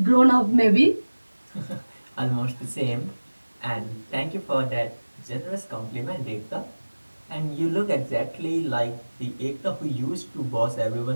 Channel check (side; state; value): both; inverted; correlation -1.00